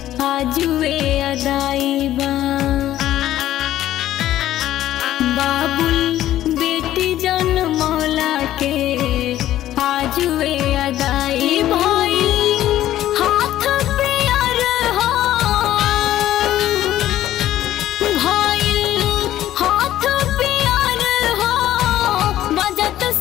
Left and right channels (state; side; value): quieter; right; 13.2 dB